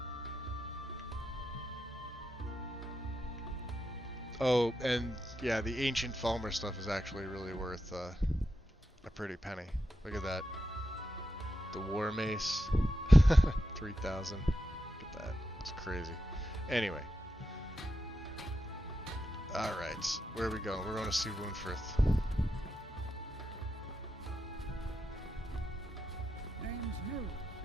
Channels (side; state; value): both; normal; correlation 0.87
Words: Oh, and yeah, the Ancient Falmer stuff is actually really worth a pretty penny. Look at that. The War Mace. 3,000. Look at that. It's crazy. Anyway. Alright. Where are we going? We're going to see Woundfirth. Name's New.